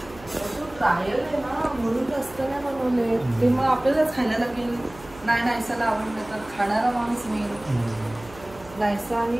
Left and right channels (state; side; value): noise; right; hum, 20 dB below the sound